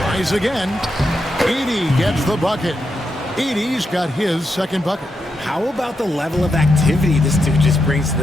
again. Edey gets the bucket. Edey's got his second bucket. How about the level of activity this dude just brings to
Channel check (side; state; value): both; normal; correlation 0.84